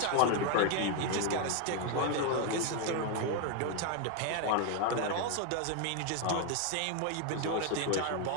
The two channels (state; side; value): different; both; correlation 0.01